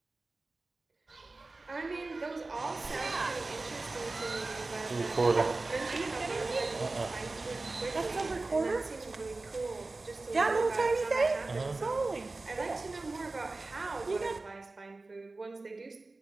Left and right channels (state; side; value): quieter; left; 3.4 dB